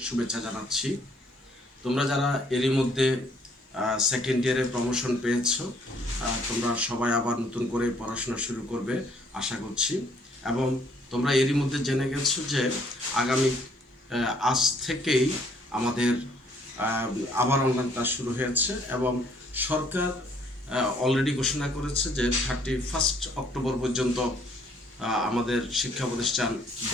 শুভেচ্ছা জানাচ্ছি। তোমরা যারা এরই মধ্যে সেকেন্ড ইয়ারে প্রমোশন পেয়েছো, তোমরা সবাই আবার নতুন করে পড়াশোনা শুরু করবে আশা করছি। এবং তোমরা এরই মধ্যে জেনে গেছো যে আগামী আজ থেকেই আমাদের আবার অনলাইন ক্লাস শুরু হয়েছে এবং সরকার অলরেডি ঘোষণা করেছে যে 31 অক্টোবর পর্যন্ত আমাদের শিক্ষা প্রতিষ্ঠান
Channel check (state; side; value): normal; both; correlation 0.63